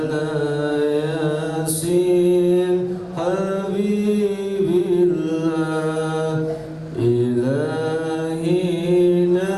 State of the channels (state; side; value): identical; both; correlation 1.00